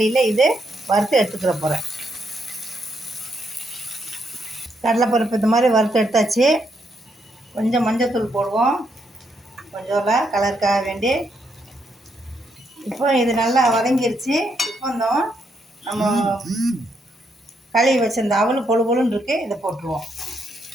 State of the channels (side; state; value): both; normal; correlation 0.77